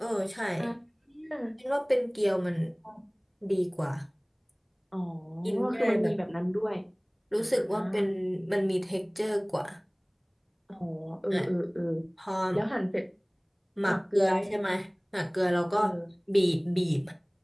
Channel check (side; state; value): both; identical; correlation 1.00